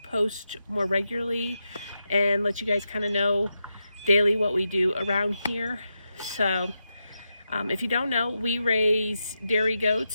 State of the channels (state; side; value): inverted; both; correlation -0.87